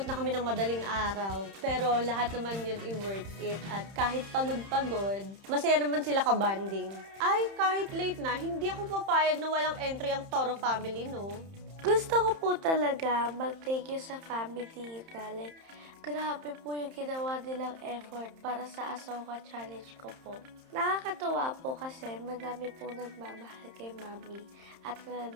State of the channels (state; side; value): late; left; 31 ms